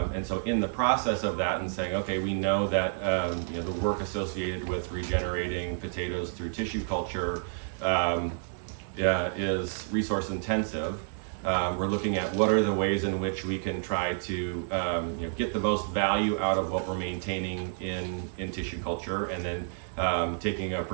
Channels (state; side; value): silent; left; 58 dB below the other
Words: so in the process of that and saying, okay, we know that the work associated with regenerating potatoes through tissue culture is resource intensive. We're looking at what are the ways in which we can try to get the most value out of what we're maintaining in tissue culture, and then taking a